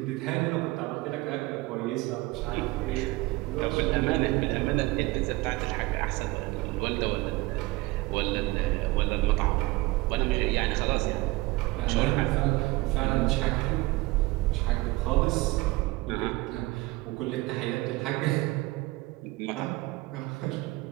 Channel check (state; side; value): quieter; left; 21.1 dB